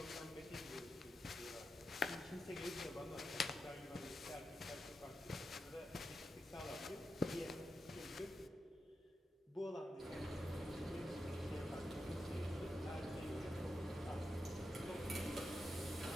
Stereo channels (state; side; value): normal; both; correlation 0.88